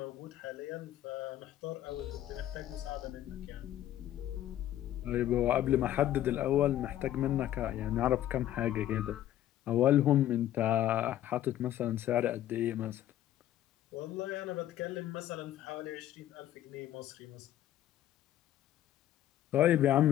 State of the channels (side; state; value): right; quieter; 12.6 dB